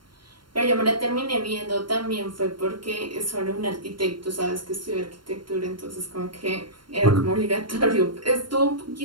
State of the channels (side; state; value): left; late; 0.72 ms